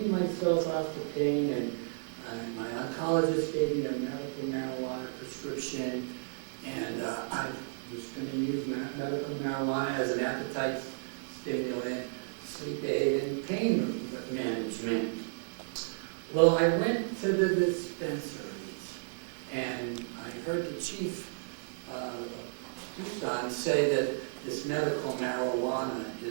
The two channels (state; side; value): silent; left; digital silence